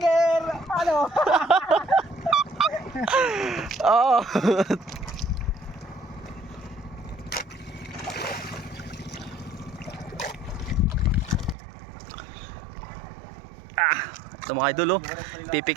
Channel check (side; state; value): left; drops out; at 11.6 s